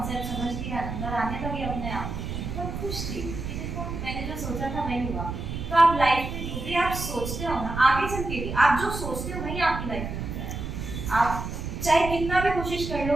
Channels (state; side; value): noise; right; rumble, 5 dB below the sound